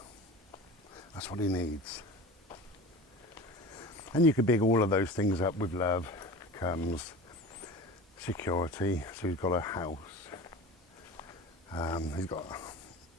That's what he needs. And you could big all of those things up. With love comes security. So he's got a house. He's got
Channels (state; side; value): normal; both; correlation 0.34